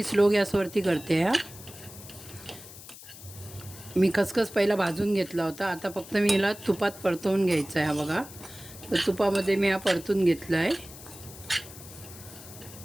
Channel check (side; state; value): left; noise; hiss, 16 dB below the sound